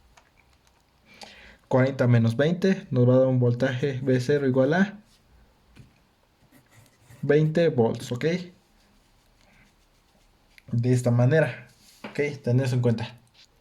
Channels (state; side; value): identical; both; correlation 1.00